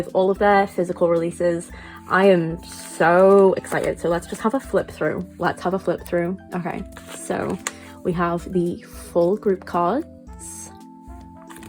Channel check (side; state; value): both; identical; correlation 1.00